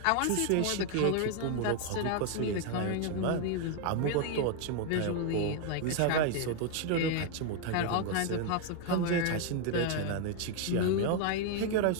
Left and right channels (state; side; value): different; both; correlation 0.00